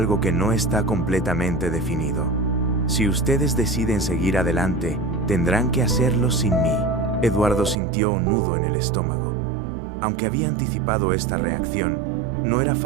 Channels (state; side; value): drops out; left; at 7.8 s